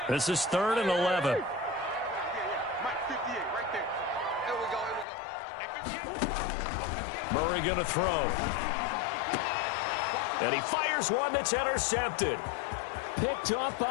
This is 3rd and 11. Murray going to throw. And he fires one that's intercepted. Picked off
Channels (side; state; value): right; drops out; at 5.1 s